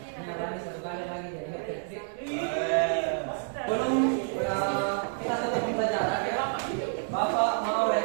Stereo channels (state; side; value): silent; left; digital silence